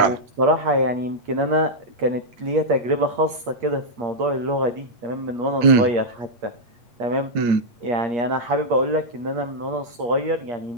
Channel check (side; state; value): left; late; 8.5 ms